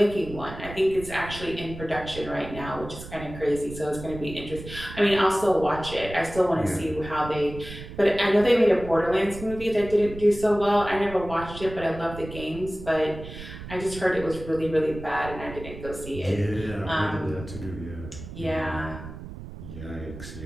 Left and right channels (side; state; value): right; noise; rumble, 12 dB below the sound